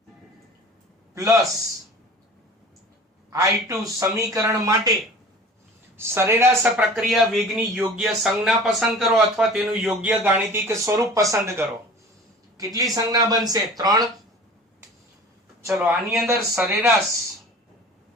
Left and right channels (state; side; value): normal; both; correlation 0.42